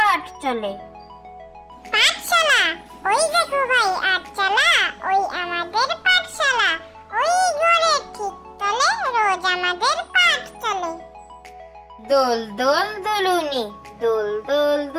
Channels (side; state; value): both; identical; correlation 1.00